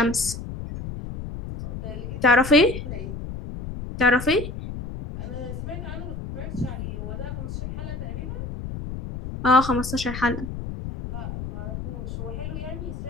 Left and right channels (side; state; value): left; noise; rumble, 7 dB below the sound